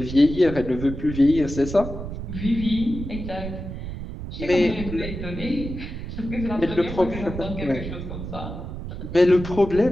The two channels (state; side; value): noise; right; rumble, 8 dB below the sound